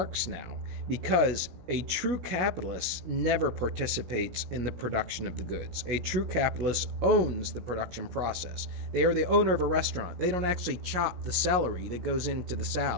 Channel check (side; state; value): left; late; 17 ms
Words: now, because a true capitalist never participates in the production of the goods. A true capitalist owns the production process. They are the owner of a restaurant. They don't actually chop the celery that goes into the